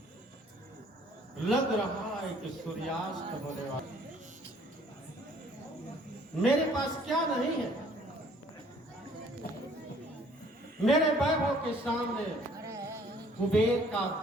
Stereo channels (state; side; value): normal; both; correlation 0.58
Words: लग रहा है कि सूर्यास्त होने वाला। मेरे पास क्या नहीं है। मेरे वैभव के सामने कुबेर का